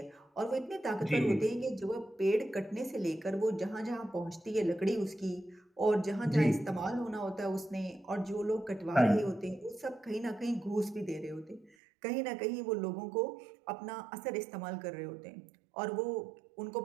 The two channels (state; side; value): drops out; left; at 11.8 s